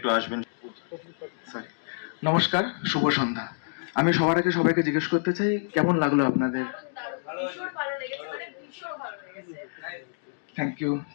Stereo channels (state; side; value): silent; right; digital silence